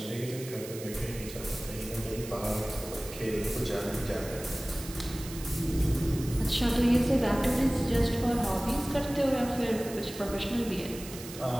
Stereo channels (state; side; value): noise; right; hiss, 13 dB below the sound